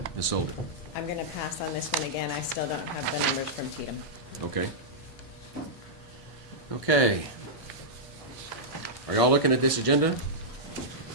Ms. Sullivan. I'm gonna pass on this one again. I still don't have the numbers from Tatum. Okay. Okay. Are y'all looking at this agenda?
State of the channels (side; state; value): both; normal; correlation -0.09